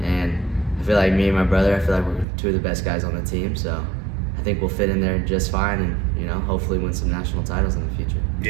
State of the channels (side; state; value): left; drops out; at 2.2 s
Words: And I feel like me and my brother, I feel like we're 2 of the best guys on the team, so I think we'll fit in there just fine, and hopefully win some national titles in the future.